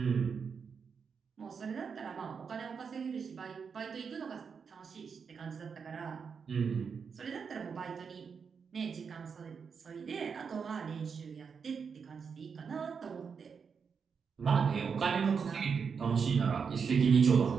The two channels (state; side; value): quieter; left; 6.1 dB